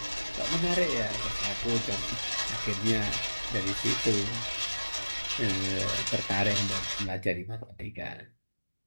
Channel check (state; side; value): inverted; both; correlation -1.00